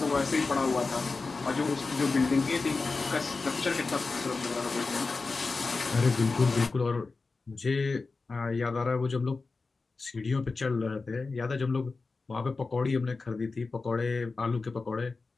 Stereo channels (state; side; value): quieter; right; 4.0 dB